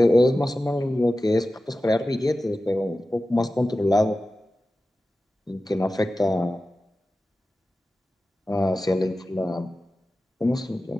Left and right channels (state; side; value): normal; both; correlation 0.94